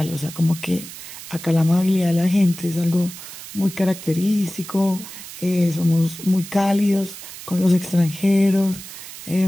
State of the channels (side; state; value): right; noise; hiss, 13 dB below the sound